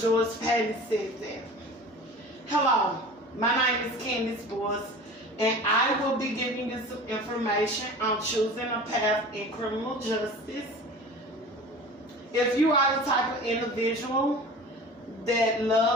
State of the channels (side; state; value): both; normal; correlation 0.39